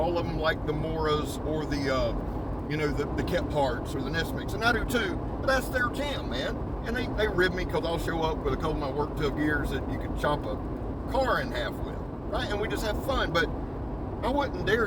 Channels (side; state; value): both; identical; correlation 1.00